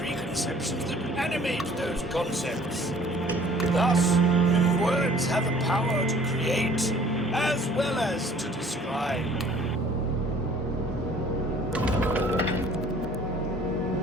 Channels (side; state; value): both; normal; correlation 0.53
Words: that animate those concepts. Thus, words have a power to create as well as to describe.